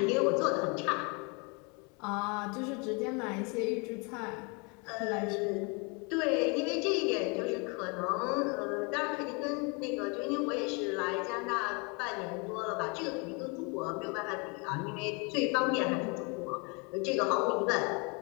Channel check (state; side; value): quieter; right; 31.9 dB